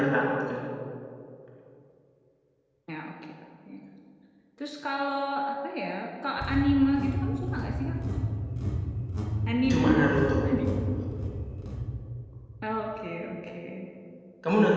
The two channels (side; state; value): both; identical; correlation 1.00